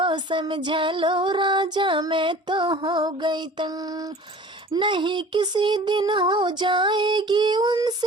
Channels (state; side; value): normal; both; correlation 0.44